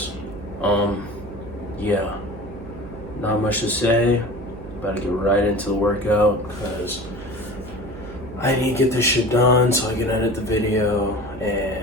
yeah, not much to say. About to get right into the workout because I need to get this shit done so I can edit the video.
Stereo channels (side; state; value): right; noise; hum, 13 dB below the sound